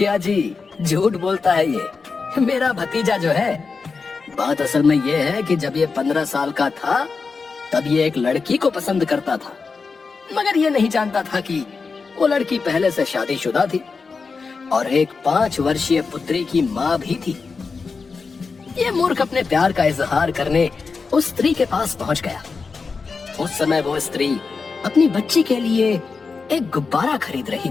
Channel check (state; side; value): quieter; right; 4.7 dB